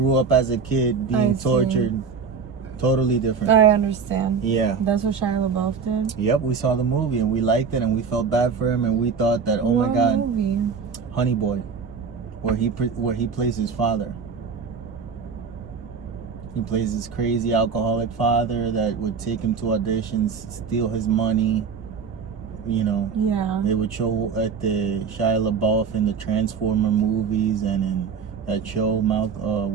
up as a kid, being tortured. Totally different. I understand. Yeah. That's what Shia Labeouf did? Yep, we saw the movie and we liked it and we felt bad for him and we thought that, oh my God, movie? Honey Boy, where he plays his father. He plays this crazy alcoholic father that would take him to auditions, steal his money. You know, yeah. They would show at the Shia LaBeouf in the Transformer movies and in that show,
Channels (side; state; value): left; quieter; 5.8 dB